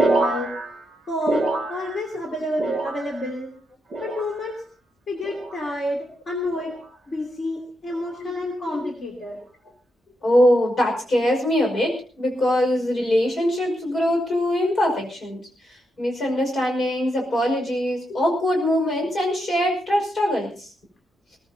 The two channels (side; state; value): both; normal; correlation 0.83